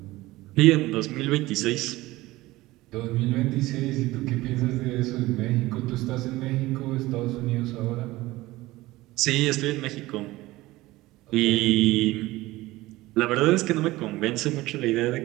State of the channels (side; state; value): left; quieter; 18.6 dB